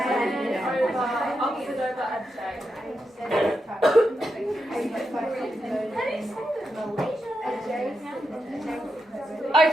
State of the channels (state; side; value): normal; both; correlation 0.86